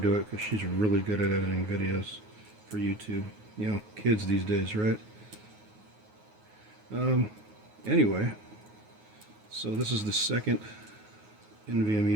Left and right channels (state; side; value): late; left; 9.4 ms